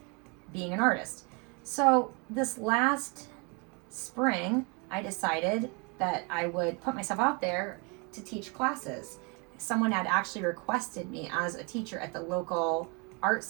being an artist. So this last spring, I decided that I would put myself out there to teach classes. Someone had actually requested me as a teacher at the local art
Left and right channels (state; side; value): quieter; left; 32.2 dB